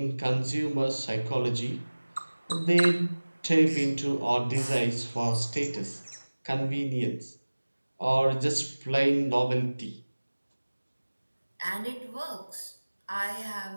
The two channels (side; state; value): both; inverted; correlation -1.00